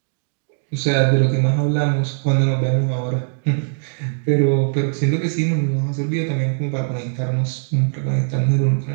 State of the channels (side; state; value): left; silent; digital silence